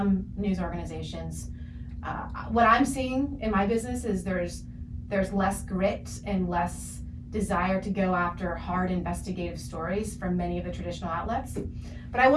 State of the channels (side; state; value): both; identical; correlation 1.00